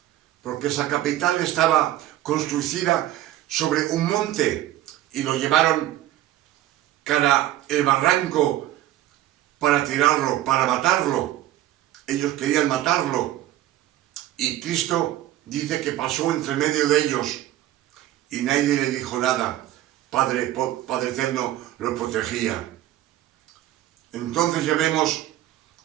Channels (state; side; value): quieter; left; 13.9 dB